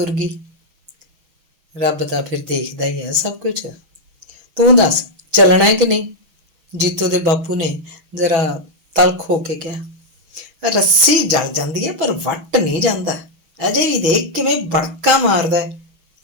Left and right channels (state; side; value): late; left; 6.3 ms